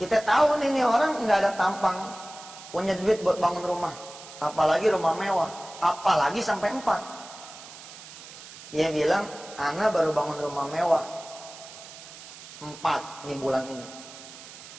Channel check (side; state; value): right; noise; hiss, 16 dB below the sound